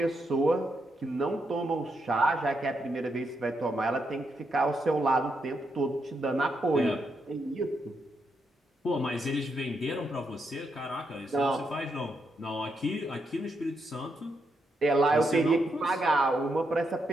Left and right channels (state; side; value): normal; both; correlation 0.81